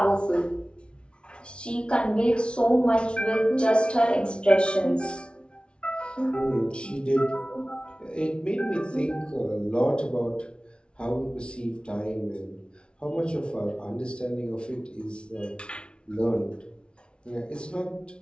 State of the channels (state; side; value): late; right; 0.058 ms